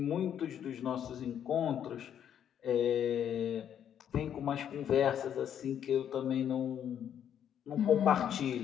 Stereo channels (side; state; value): right; quieter; 9.4 dB